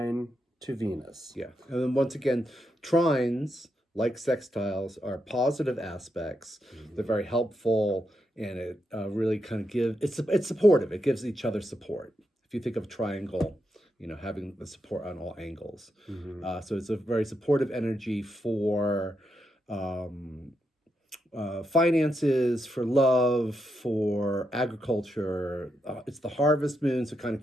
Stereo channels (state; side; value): normal; both; correlation 0.83